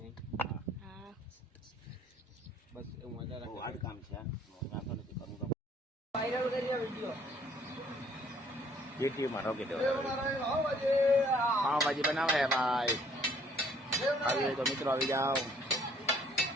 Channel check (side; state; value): both; normal; correlation 0.61